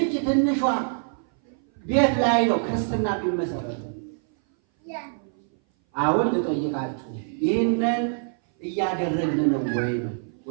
ትንሿ ቤት ላይ ነው ክርስትና የሚመሰረተው። አሁን ልጠይቃችሁ፣ ይህንን እያደረግን ነው ወይ ነው?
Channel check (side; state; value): left; silent; 59 dB below the other